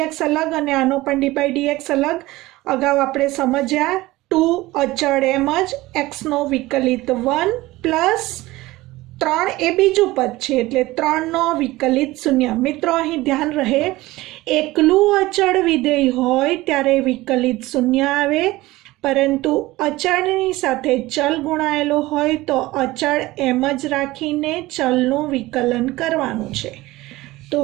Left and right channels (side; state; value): left; quieter; 18.9 dB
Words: અલગ અને આનો પણ d/dx અલગ. અગાઉ આપણે સમજ્યા 2 અચળ એમ જ, x નો વિકલિત 1 પ્લસ 3 એ બીજું પદ છે એટલે 3 નો વિકલિત 0. મિત્રો અહીં ધ્યાન રહે, એકલું અચળ વિધેય હોય ત્યારે વિકલિત 0 આવે, પરંતુ અચળની સાથે ચલ ગુણાયેલો હોય તો અચળ એમ જ રાખીને ચલનું વિકલન કરવાનું છે. તો